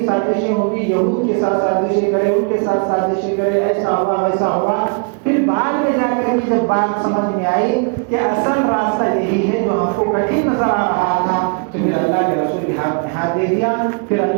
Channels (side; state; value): left; quieter; 37.6 dB